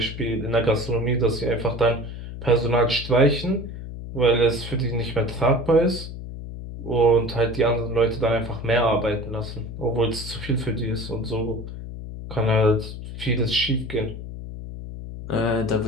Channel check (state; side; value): noise; left; hum, 10 dB below the sound